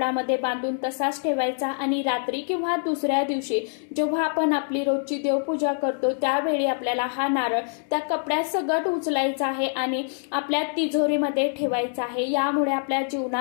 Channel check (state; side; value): silent; right; digital silence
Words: बांधून तसाच ठेवायचा. आणि रात्री किंवा दुसऱ्या दिवशी जेव्हा आपण आपली रोजची देवपूजा करतो त्यावेळी आपल्याला हा नारळ त्या कपड्यात सगट उचलायचा आहे आणि आपल्या तिजोरीमध्ये ठेवायचा आहे. यामुळे आपल्या